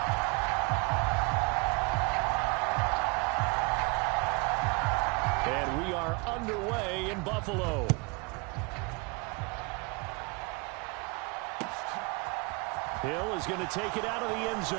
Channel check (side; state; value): left; quieter; 30.2 dB